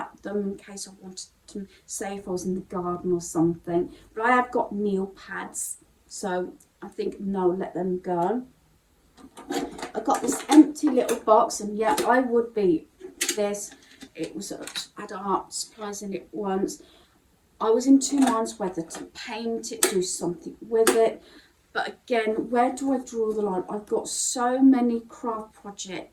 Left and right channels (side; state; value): both; identical; correlation 1.00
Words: them in case I wanted to, say if I was in the garden or something, but I have got nail pads, so I think no, let them go. I got this empty little box, and yeah, I would be this. It was had art supplies in it once. I was in two minds whether to paint it, do something with it, but again, where do I draw the line? I've got so many craft